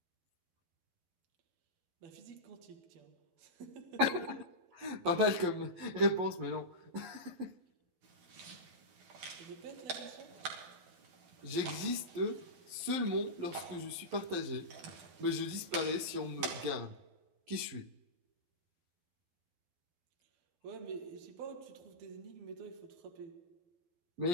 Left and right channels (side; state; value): left; late; 11 ms